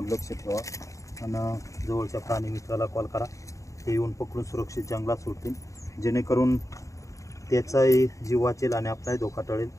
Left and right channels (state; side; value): late; right; 0.16 ms